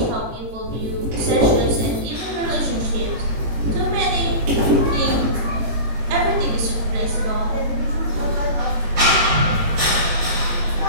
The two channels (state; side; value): late; left; 18 ms